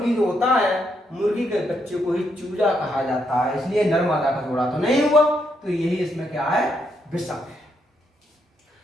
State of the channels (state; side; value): normal; both; correlation 0.78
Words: जो होता है मुर्गी के बच्चे को ही चूजा कहा जाता है, इसलिए नर्मदा का जोड़ा तो नहीं हुआ, तो यही इसमें क्या है विषम है।